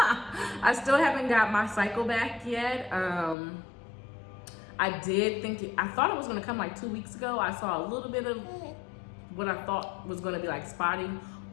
still haven't got my cycle back yet. I thought it was gonna come like 2 weeks ago. I saw a little bit of what I thought was gonna be like spotting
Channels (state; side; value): drops out; right; at 3.4 s